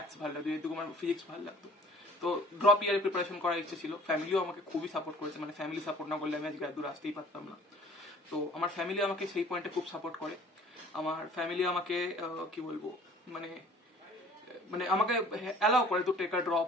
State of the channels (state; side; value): normal; both; correlation 0.51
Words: ভালো লাগতো, যেহেতু আমার ফিজিক্স ভালো লাগতো। তো ড্রপ ইয়ারে প্রিপারেশন করার ইচ্ছে ছিল। ফ্যামিলিও আমাকে খুবই সাপোর্ট করেছে, মানে ফ্যামিলি সাপোর্ট না করলে আমি আজকে এত দূর আসতেই পারতাম না। তো আমার ফ্যামিলি আমাকে সেই পয়েন্টে খুব সাপোর্ট করে। আমার ফ্যামিলি আমাকে কি বলবো, মানে আমাকে অ্যালাউ করে তো টেক আ